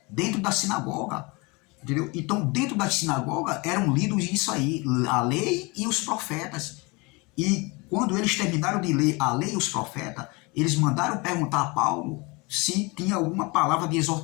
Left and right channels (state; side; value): quieter; right; 26.9 dB